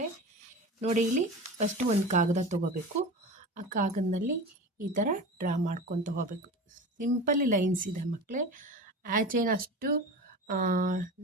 ನೋಡಿ, ಇಲ್ಲಿ ಫಸ್ಟು ಒಂದು ಕಾಗದ ತೊಗೋಬೇಕು. ಆ ಕಾಗದದಲ್ಲಿ ಈ ಥರ ಡ್ರಾ ಮಾಡ್ಕೊತ ಹೋಗಬೇಕು. ಸಿಂಪಲ್ ಲೈನ್ಸ್ ಇದೆ ಮಕ್ಕಳೇ. ಹ್ಯಾಚ್ ಏನು ಅಷ್ಟು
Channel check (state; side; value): normal; both; correlation 0.31